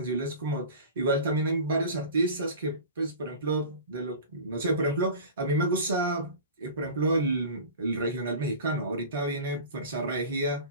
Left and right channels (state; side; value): inverted; both; correlation -0.35